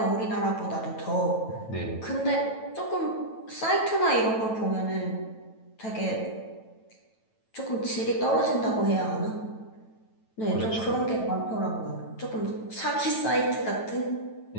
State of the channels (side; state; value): right; late; 9.1 ms